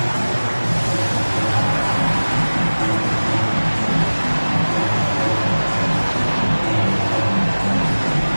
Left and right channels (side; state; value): both; inverted; correlation -1.00